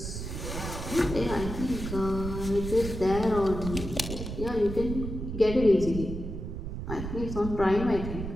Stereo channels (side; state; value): right; noise; rumble, 6 dB below the sound